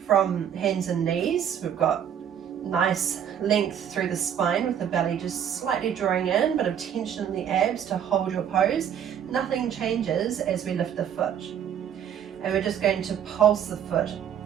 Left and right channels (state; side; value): quieter; left; 9.1 dB